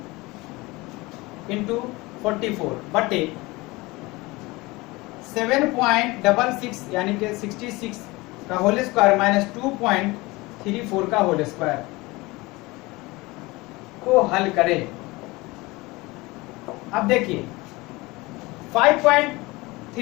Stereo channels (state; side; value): quieter; right; 22.4 dB